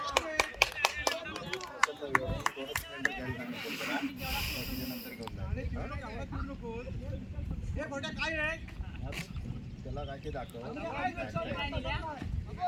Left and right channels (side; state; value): both; identical; correlation 1.00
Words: त्याला काय ते दाखव.